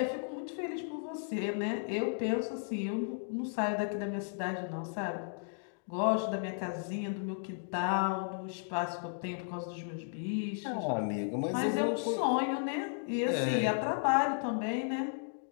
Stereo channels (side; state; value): right; silent; digital silence